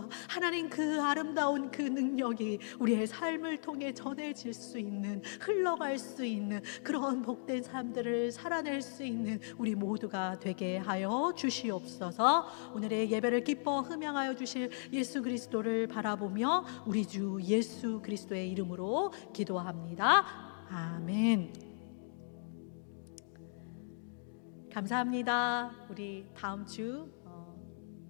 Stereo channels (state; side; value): silent; right; digital silence